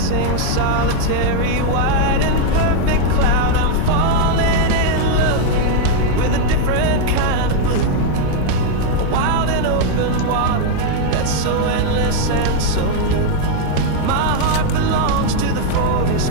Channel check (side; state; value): both; different; correlation 0.00